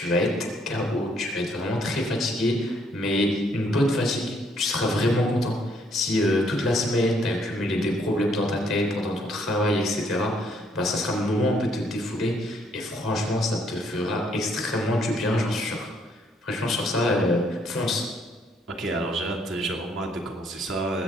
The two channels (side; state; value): both; normal; correlation 0.68